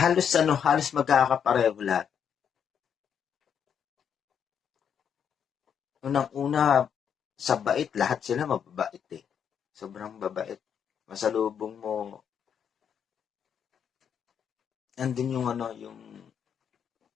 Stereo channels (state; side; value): quieter; right; 8.0 dB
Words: magkakapareho lahat. Unang-una, sa bait, lahat sila mababait eh. Sobrang babait. Masalubong mo, nandun yung yung